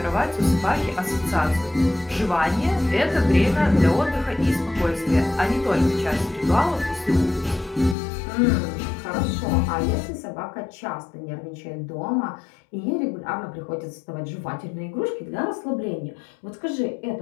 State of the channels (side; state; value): right; drops out; at 8.0 s